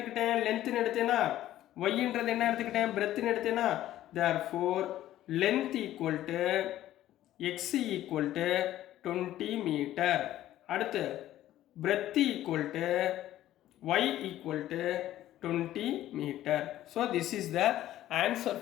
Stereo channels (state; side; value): quieter; right; 13.6 dB